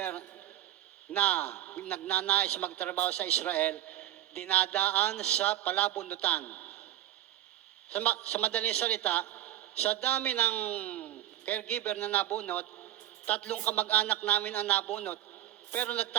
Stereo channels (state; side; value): quieter; left; 13.5 dB